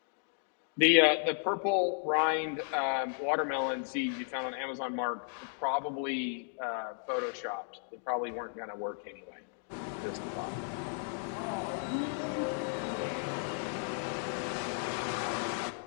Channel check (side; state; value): right; silent; 55 dB below the other